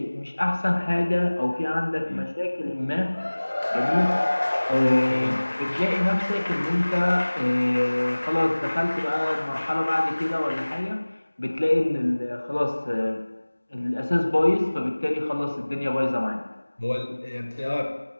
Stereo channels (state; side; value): inverted; both; correlation -1.00